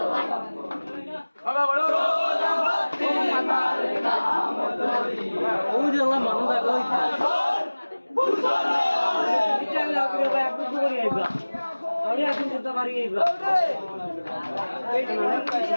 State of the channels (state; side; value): inverted; both; correlation -1.00